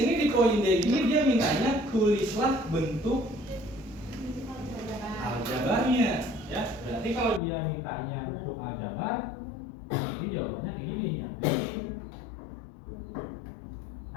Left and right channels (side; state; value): right; drops out; at 7.4 s